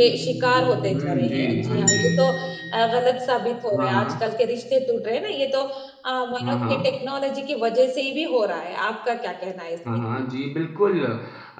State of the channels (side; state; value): both; identical; correlation 1.00